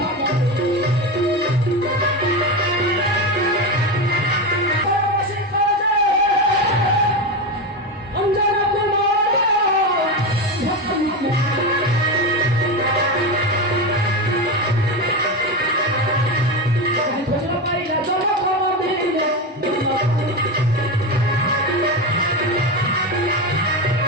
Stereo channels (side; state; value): both; normal; correlation 0.17